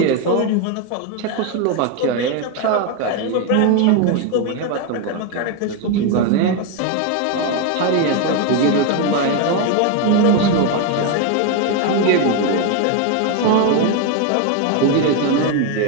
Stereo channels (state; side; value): different; both; correlation 0.02